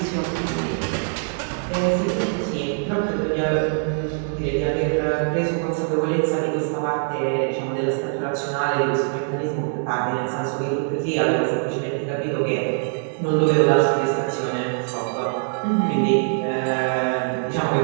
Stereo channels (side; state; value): left; silent; 58 dB below the other